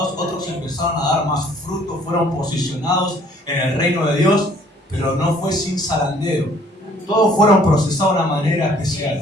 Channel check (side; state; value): both; normal; correlation 0.58